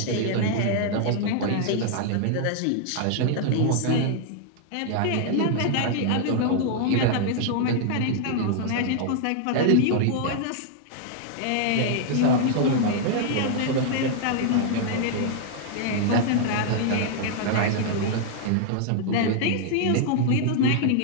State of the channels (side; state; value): both; different; correlation -0.01